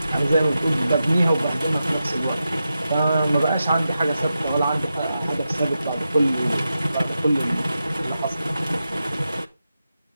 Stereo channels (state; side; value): inverted; both; correlation -0.90